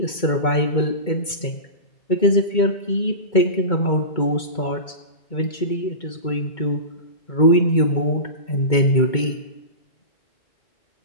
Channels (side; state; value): right; late; 2.2 ms